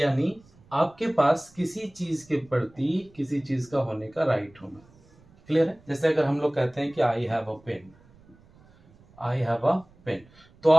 आपके पास किसी चीज के प्रति किसी चीज का होने का राइट होना। क्लियर है? जैसे अगर हम लोग कहते हैं कि I have a pen, I have a pen, तो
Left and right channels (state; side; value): noise; right; rumble, 28 dB below the sound